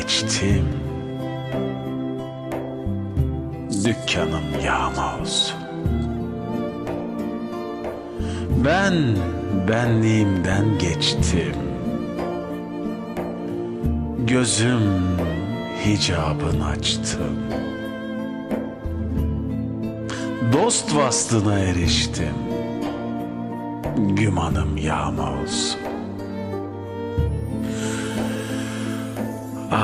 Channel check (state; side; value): identical; both; correlation 1.00